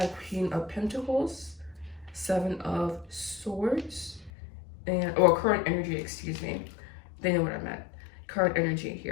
Queen of Pentacles, Seven of Swords, or current energy, excuse me. They know what I meant. Current energy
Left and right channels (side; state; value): right; drops out; at 4.3 s